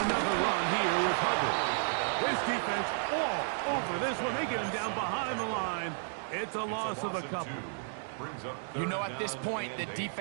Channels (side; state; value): left; silent; digital silence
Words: run here with Hubbard. This defense all over this one. They get him down behind the line. It's a loss of a couple. You know, at this point, the